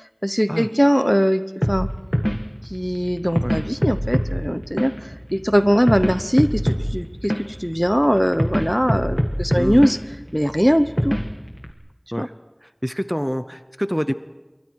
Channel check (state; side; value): identical; both; correlation 1.00